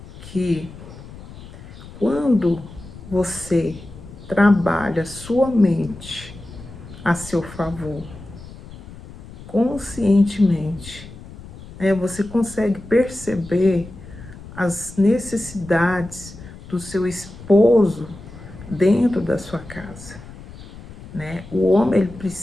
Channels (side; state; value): left; noise; rumble, 16 dB below the sound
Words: que quando você trabalha sua mente a seu favor, conscientemente, você consegue perceber as necessidades do seu esposo dentro da sua casa, né? O homem ele